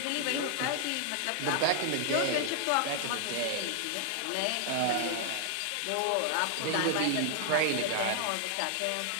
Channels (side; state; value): both; different; correlation 0.00